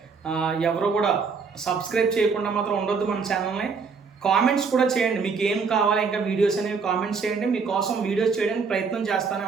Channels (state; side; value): quieter; left; 5.2 dB